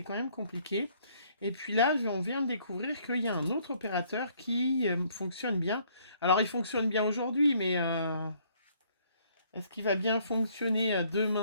quand même compliqué. Et puis là, on vient de découvrir qu'il y a un autre opérateur qui fonctionne bien. Alors, il fonctionne bien aujourd'hui, mais est-ce qu'il va bien fonctionner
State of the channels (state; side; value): inverted; both; correlation -0.64